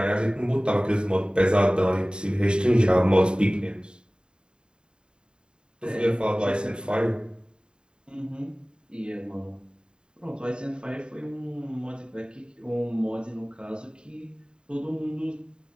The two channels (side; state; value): left; late; 0.049 ms